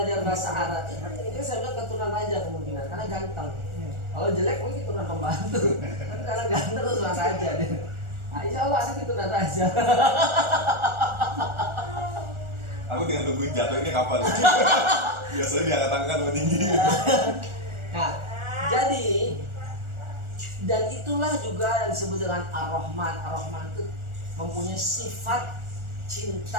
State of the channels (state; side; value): late; left; 1.4 ms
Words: bahasa Arab, ini saya bilang keturunan raja kemungkinan karena ganteng. Kalau jelek mungkin keturunan pembantu, tapi karena ganteng keturunan raja deh. Nah, insya Allah ada keturunan raja. Aku tinggal tungguin jatuhnya kapan. Biasanya diangkat-angkat lebih tinggi. Nah, jadi dan itulah juga yang disebut dengan Ar-Rahman. Ar-Rahman itu mempunyai sifat